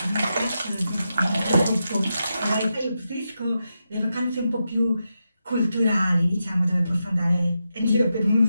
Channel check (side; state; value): both; inverted; correlation -0.87